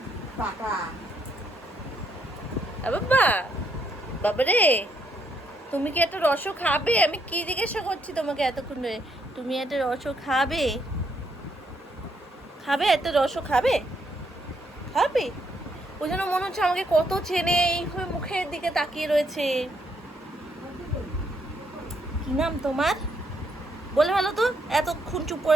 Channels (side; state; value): both; normal; correlation 0.74